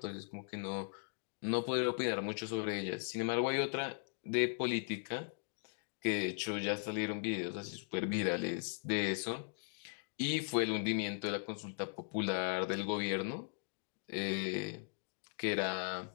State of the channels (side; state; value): right; silent; digital silence